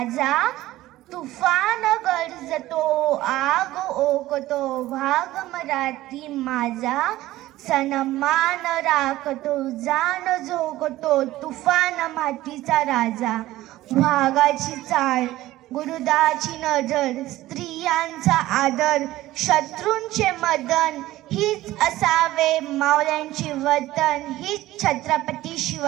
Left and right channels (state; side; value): quieter; left; 16.1 dB